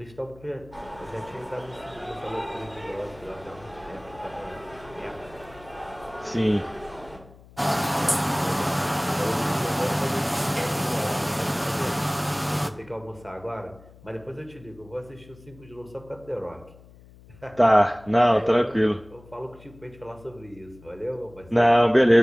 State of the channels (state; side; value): noise; left; hum, 23 dB below the sound